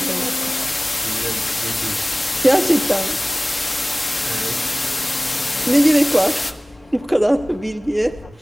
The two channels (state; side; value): normal; both; correlation 0.98